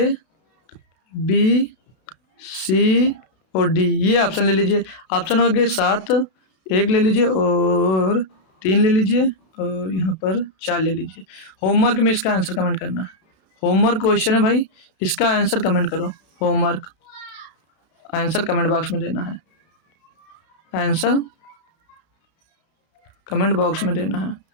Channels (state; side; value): late; right; 32 ms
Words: बी सी और डी, ये ऑप्शन ले लीजिए। ऑप्शन हो गए 7, 1 ले लीजिए और 3 ले लीजिए और यहाँ पर 4 ले लीजिए। होमवर्क में इसका आंसर कमेंट करना है। होमवर्क क्वेश्चन है भाई, इसका आंसर कमेंट करो। होमवर्क आंसर कमेंट बॉक्स में देना है, आंसर कमेंट बॉक्स में देना है